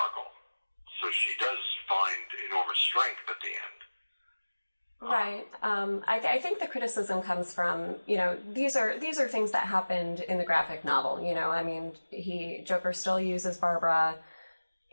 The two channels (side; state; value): both; inverted; correlation -1.00